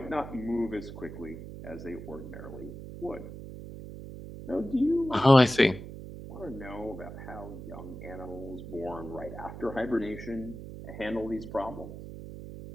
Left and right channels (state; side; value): noise; right; hum, 11 dB below the sound